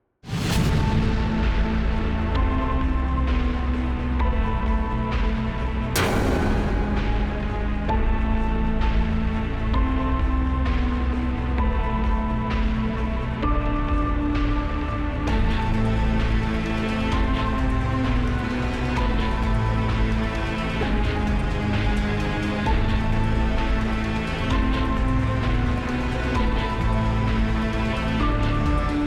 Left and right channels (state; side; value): identical; both; correlation 1.00